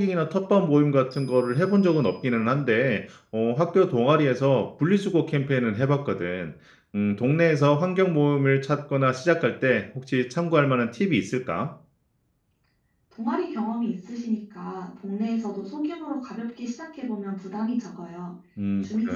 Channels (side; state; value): both; identical; correlation 1.00